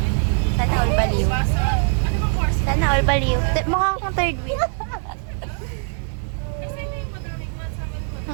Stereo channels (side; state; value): left; silent; 56 dB below the other